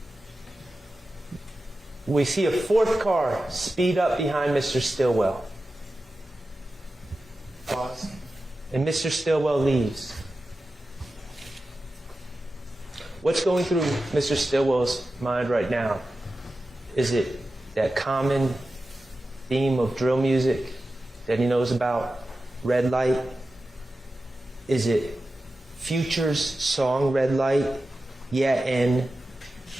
We see a fourth car speed up behind Mr. Stillwell. Pause. And Mr. Stillwell leaves. What's going through Mr. Stillwell's mind right now? Is it that common theme of drill music that he knows about? Red Light? Is it Future's song Red Light? Yeah, and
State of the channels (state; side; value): normal; both; correlation 0.93